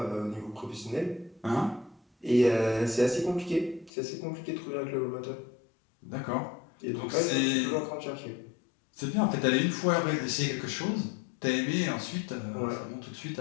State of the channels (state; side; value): drops out; right; at 3.9 s